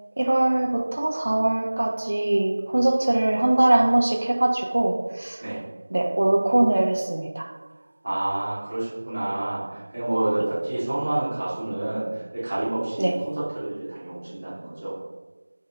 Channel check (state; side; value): inverted; both; correlation -1.00